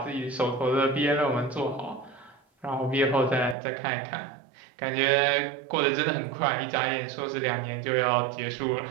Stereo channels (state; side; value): drops out; left; at 3.6 s